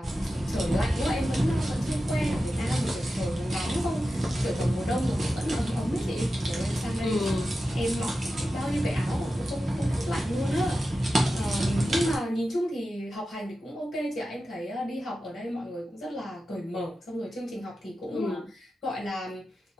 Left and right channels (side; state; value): both; normal; correlation 0.92